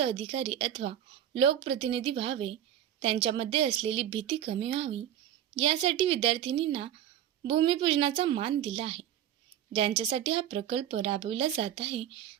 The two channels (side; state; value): left; quieter; 11.0 dB